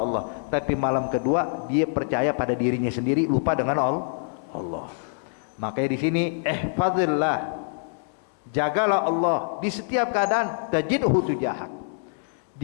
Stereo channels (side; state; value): right; silent; digital silence